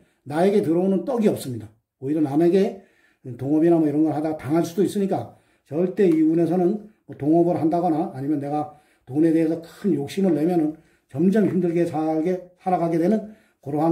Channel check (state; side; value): identical; both; correlation 1.00